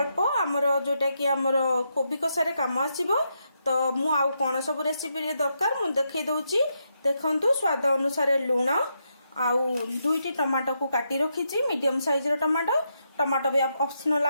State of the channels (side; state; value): both; inverted; correlation -0.81